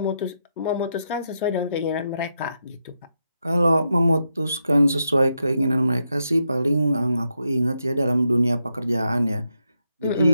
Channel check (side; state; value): both; inverted; correlation -0.83